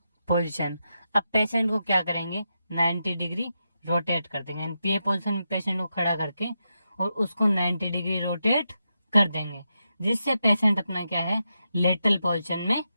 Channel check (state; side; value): inverted; both; correlation -0.86